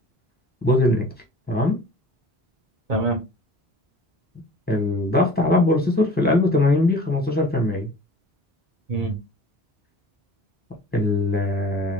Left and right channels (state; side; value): normal; both; correlation 0.45